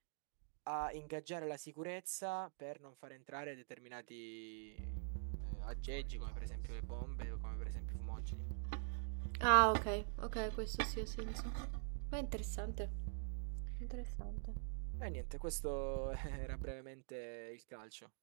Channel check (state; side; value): silent; left; digital silence